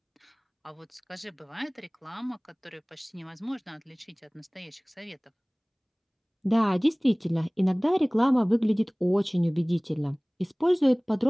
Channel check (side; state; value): both; identical; correlation 1.00